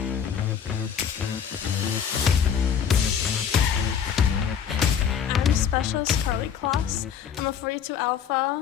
Specialist Carley Kloss. I'm a 42 Alpha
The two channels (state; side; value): quieter; right; 7.9 dB